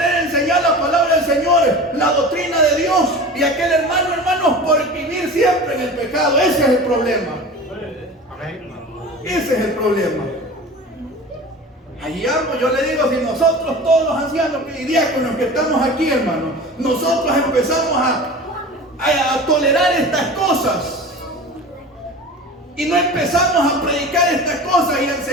enseñar la palabra del Señor, la doctrina de Dios, y aquel hermano, hermanos, por vivir siempre en el pecado. Ese es el problema. Ese es el problema. Allí amo, yo le digo, si nosotros todos los ancianos y diáconos que estamos aquí, hermanos, nosotros empezamos a tolerar estas cosas y no empezamos a predicar estas cosas y a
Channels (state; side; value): normal; both; correlation 0.35